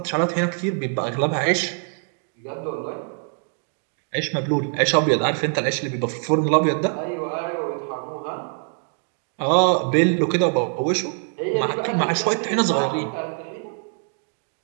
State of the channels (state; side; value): silent; left; 55 dB below the other